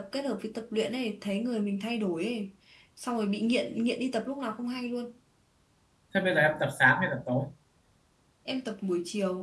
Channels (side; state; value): both; identical; correlation 1.00